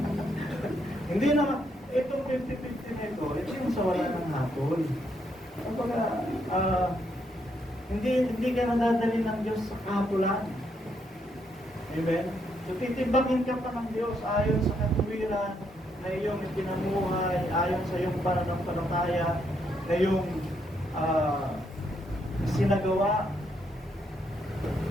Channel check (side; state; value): both; normal; correlation 0.76